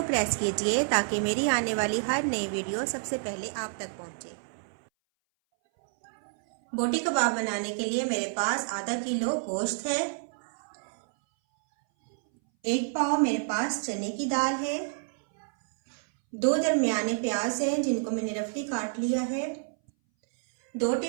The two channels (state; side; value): silent; left; 59 dB below the other